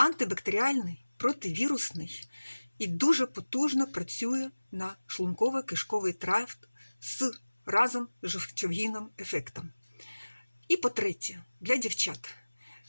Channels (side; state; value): both; inverted; correlation -1.00